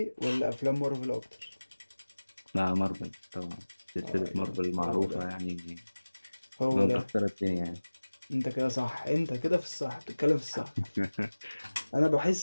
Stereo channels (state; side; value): inverted; both; correlation -1.00